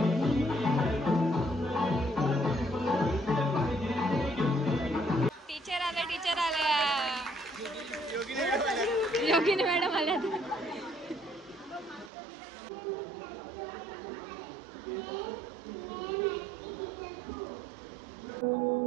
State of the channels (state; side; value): drops out; left; at 12.1 s